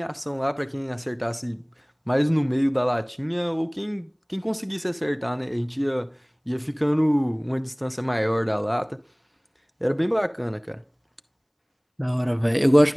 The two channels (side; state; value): both; identical; correlation 1.00